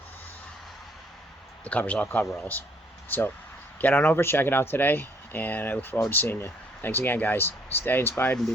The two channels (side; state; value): both; normal; correlation 0.64